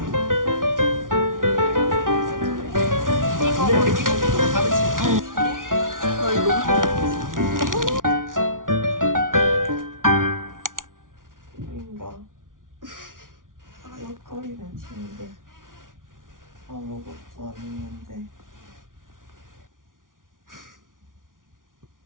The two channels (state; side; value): late; left; 0.89 ms